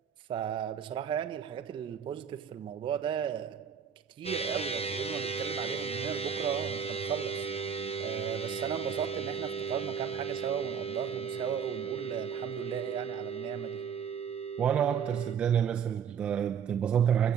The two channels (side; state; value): left; quieter; 7.4 dB